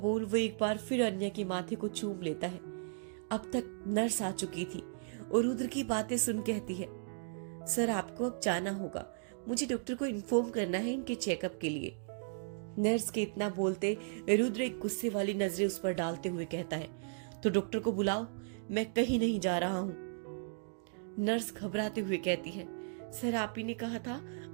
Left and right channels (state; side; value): silent; left; digital silence